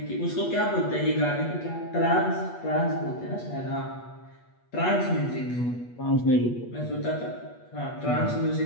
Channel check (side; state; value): right; late; 8.3 ms